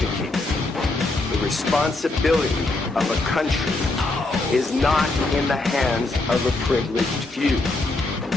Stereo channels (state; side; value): quieter; right; 3.1 dB